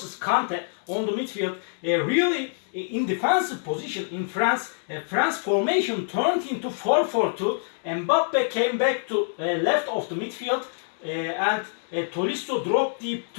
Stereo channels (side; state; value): right; silent; 61 dB below the other